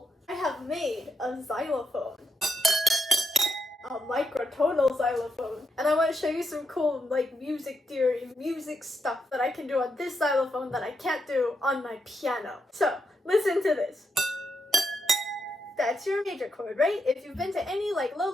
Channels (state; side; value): normal; both; correlation 0.82